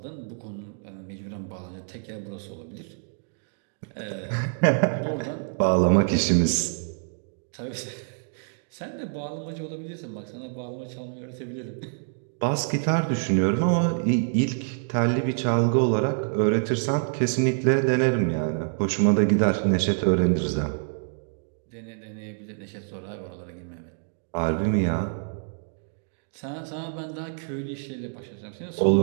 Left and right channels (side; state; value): left; silent; digital silence